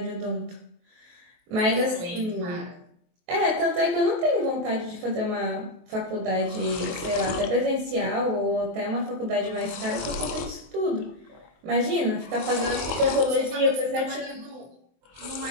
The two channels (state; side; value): late; left; 23 ms